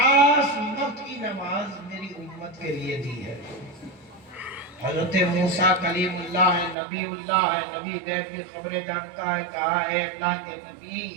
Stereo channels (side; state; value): left; drops out; at 6.8 s